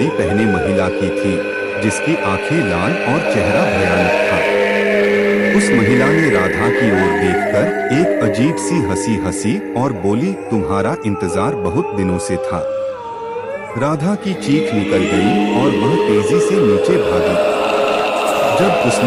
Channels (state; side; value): identical; both; correlation 1.00